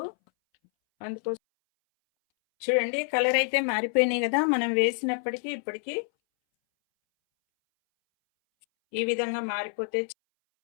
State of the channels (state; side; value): silent; right; 60 dB below the other